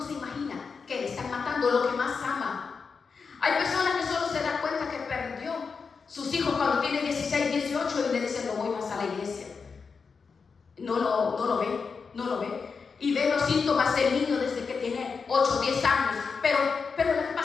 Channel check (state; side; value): quieter; right; 5.3 dB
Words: imaginan que le están matando lo que más ama. Hay personas que solo se dan cuenta que perdió sus hijos cuando tienen 16, 18 y le dicen no voy más a la iglesia. No lo ve. Y ve los síntomas del niño desde que tiene 8, 10 años. Pero lo que